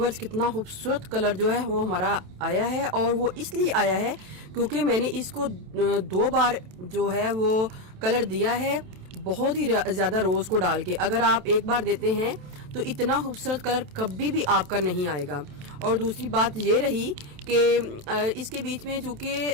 कितना खूबसूरत कलर जो है वो हमारा आया है, और वो इसलिए आया है क्योंकि मैंने इसको 2 बार जो है वो कलर दिया है, बहुत ही ज्यादा रोज को डाल के। अगर आप एक बार देते हैं तो इतना खूबसूरत कलर कभी भी आपका नहीं आएगा। और दूसरी बात ये रही कि इसके बीच में चूंकि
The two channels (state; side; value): late; left; 27 ms